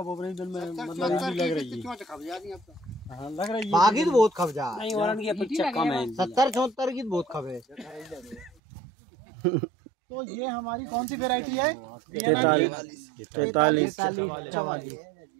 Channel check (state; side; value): drops out; left; at 8.6 s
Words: बोबरे में मतलब लग रही है, लग रही है बाकी तो बहुत खब जा नहीं, वारन की अपेक्षा कम है। 70-74 की बहुत खब है। तो ये हमारी कौन सी वेराइटी है? 43-44।